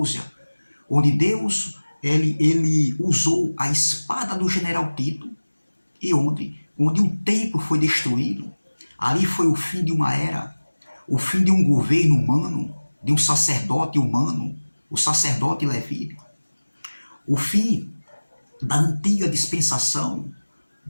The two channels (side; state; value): both; inverted; correlation -1.00